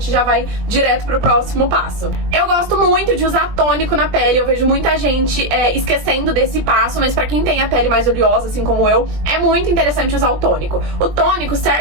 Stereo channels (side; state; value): left; late; 20 ms